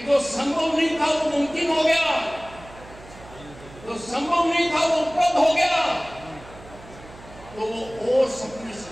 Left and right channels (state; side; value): noise; right; hum, 19 dB below the sound